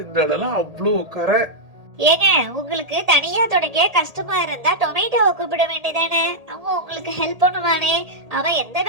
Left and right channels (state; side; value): late; left; 1.8 ms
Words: இந்த இடம்லாம் அவ்வளவு கரை. ஏங்க, உங்களுக்கு தனியா துடைக்க கஷ்டமா இருந்தா டொமேட்டோவை கூப்பிட வேண்டியதானே? அவன் உங்களுக்கு ஹெல்ப் பண்ணுவானே. அவன் எந்த